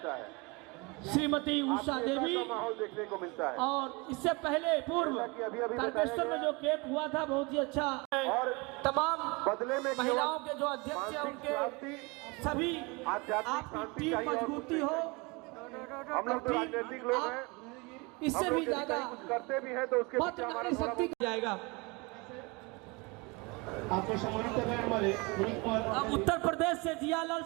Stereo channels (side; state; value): left; quieter; 27.3 dB